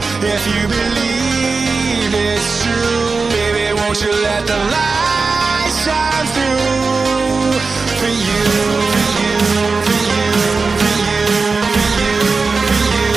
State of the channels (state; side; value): quieter; left; 4.3 dB